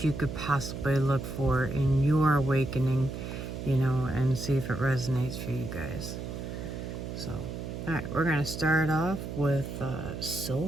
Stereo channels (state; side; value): noise; right; hum, 7 dB below the sound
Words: you could possibly look for in your awakening, and see if it resonates for you guys. So, alright, we're going to start off with